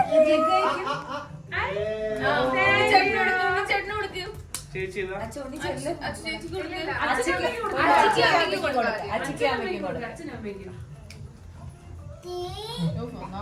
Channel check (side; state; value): both; identical; correlation 1.00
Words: ചേട്ടന് കൊടുക്ക്. ചേച്ചി